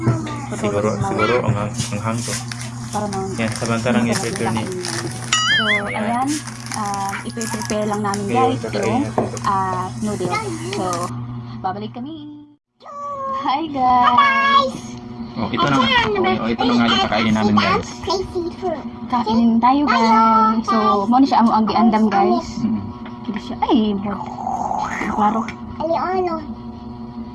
Siguro tutulog ang hang to. para naman Yan, samantalang i-prepare ni. So, ayan, ipi-prepare lang namin Okay, guys kakain yung natin ito. noodle. So, babalik kami. Hi guys! Oh, ito na. Ito na nga yung pakainin namin, guys. Kainin tayo guys. So, mo siya amo ang giandam guys. Hindi siya, ay, klaro.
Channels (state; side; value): identical; both; correlation 1.00